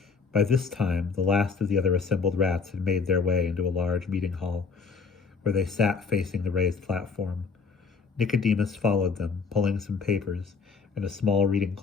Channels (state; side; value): quieter; right; 5.0 dB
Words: By this time, the last of the other assembled rats had made their way into a large meeting hall, where they sat facing the raised platform. Nicodemus followed them, pulling some papers and a small reading